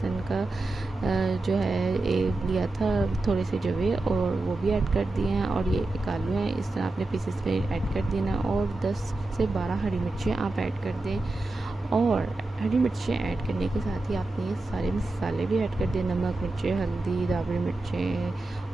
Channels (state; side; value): quieter; left; 3.0 dB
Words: का जो है लिया था थोड़े से जवे और वो भी ऐड कर दिए हैं। और ये एक आलू है, इस तरह आपने पीसेस में ऐड कर देना और 10 से 12 हरी मिर्चें आप ऐड कर दें। और हरी मिर्चें ऐड करने के साथ ही आपने ये सारे मसाले भी ऐड कर दिए, नमक, मिर्चें, हल्दी, दाबड़ी